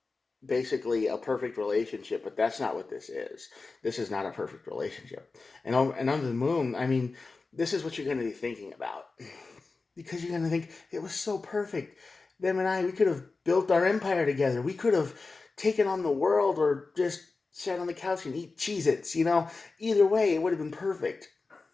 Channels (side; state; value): right; quieter; 3.9 dB